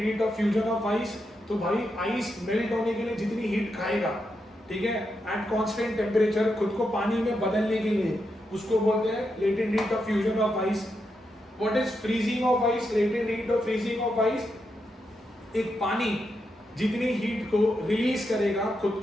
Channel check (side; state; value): both; normal; correlation 0.84